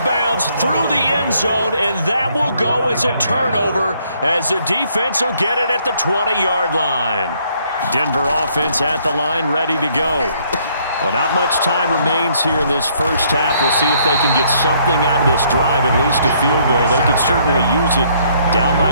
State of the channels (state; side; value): inverted; both; correlation -0.66